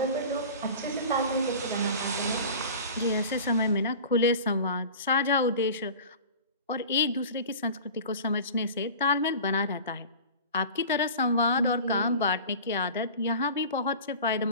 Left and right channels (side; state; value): both; inverted; correlation -0.38